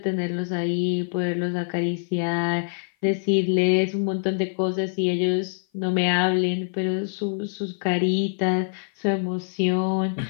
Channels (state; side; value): silent; right; 55 dB below the other